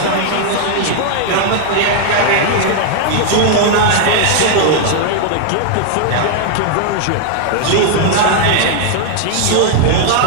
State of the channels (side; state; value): both; different; correlation 0.00